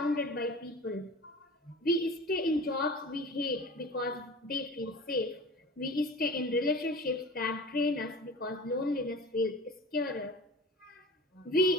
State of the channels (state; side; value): normal; both; correlation 0.38